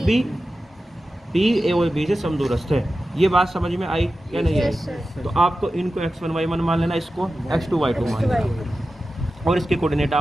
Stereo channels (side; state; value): both; normal; correlation 0.93